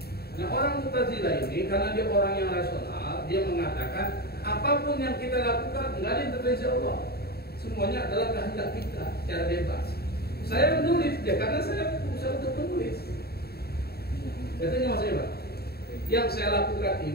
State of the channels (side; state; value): right; late; 0.46 ms